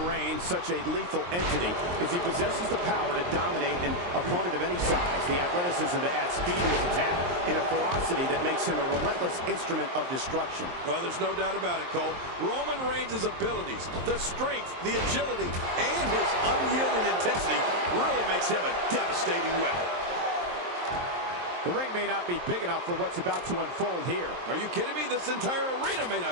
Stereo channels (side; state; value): left; late; 23 ms